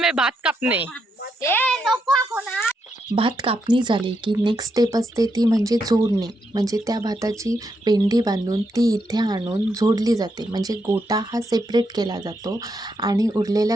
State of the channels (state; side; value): normal; both; correlation 0.80